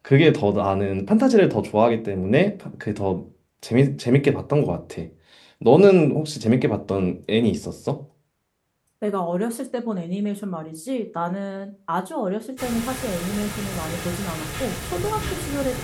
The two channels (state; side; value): identical; both; correlation 1.00